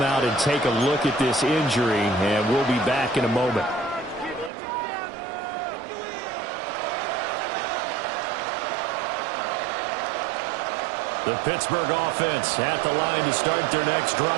out and take a look at this injury, and we'll be back in a moment. The Pittsburgh offense at the line to start their next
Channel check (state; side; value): drops out; left; at 4.5 s